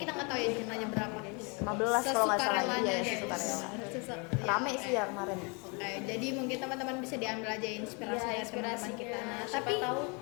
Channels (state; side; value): quieter; right; 32.2 dB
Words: nggak tahu ya jumlahnya berapa, guys. 15 kalau nggak salah. Sesukarelanya, Iya, guys. sesukarela. Ya, Rame sih ya kemarin. Oke, jadi mungkin teman-teman bisa diambil aja inspirasi Iya, dari teman-teman kita. Nah, Siapa tapi tahu